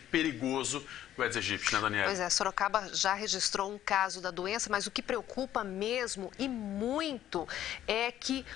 perigoso do Aedes aegypti, né, Daniela? Pois é, Sorocaba já registrou um caso da doença, mas o que preocupa mesmo e muito é que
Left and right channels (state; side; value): quieter; right; 12.0 dB